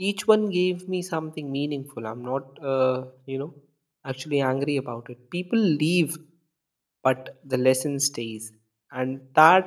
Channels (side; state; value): both; identical; correlation 1.00